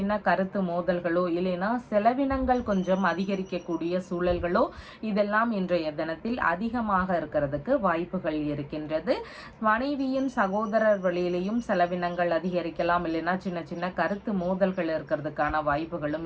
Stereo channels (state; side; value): identical; both; correlation 1.00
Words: கருத்து மோதல்களோ இல்லைன்னா செலவினங்கள் கொஞ்சம் அதிகரிக்கக்கூடிய சூழல்களோ இதெல்லாம் இன்றைய தினத்தில் அதிகமாக இருக்கிறதுக்கு வாய்ப்புகள் இருக்கின்றது. மனைவியின் சகோதரர் வழியிலையும் செலவினங்கள் அதிகரிக்கலாம். இல்லைன்னா சின்ன சின்ன கருத்து மோதல்கள் இருக்கிறதுக்கான வாய்ப்புகளும்